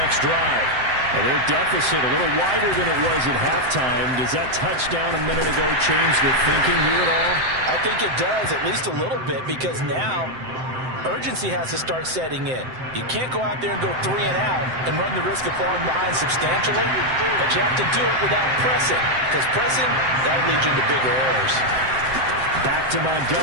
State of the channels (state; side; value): late; left; 7.7 ms